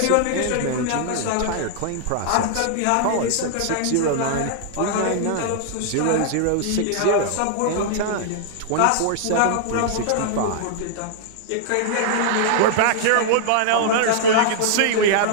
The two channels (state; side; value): different; both; correlation -0.01